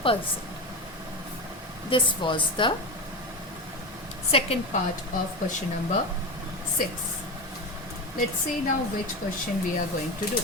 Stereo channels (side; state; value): both; normal; correlation 0.21